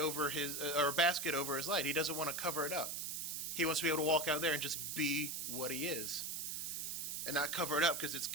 his or a basket over his light. He doesn't want to cover it up. He wants to be able to walk out there and just be what he is, and not cover it up because it's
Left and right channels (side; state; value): right; noise; hiss, 3 dB below the sound